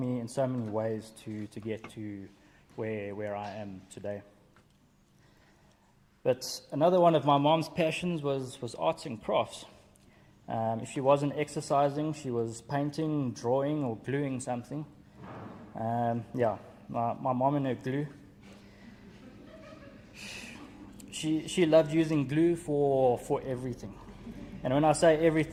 in so many ways to get to where I am today. But another one of my mom's passions was arts and crafts. If she wasn't exercising, she was painting, drawing, or gluing something. My mom and her glue. She loved using glue for everything. And when I say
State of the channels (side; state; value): both; identical; correlation 1.00